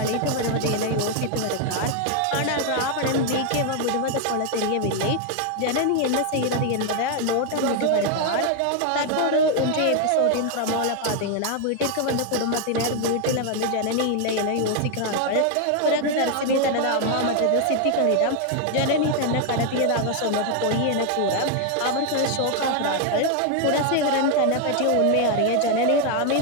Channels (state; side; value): different; both; correlation 0.00